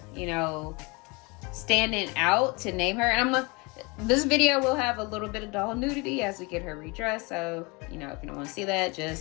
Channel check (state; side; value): quieter; right; 27.7 dB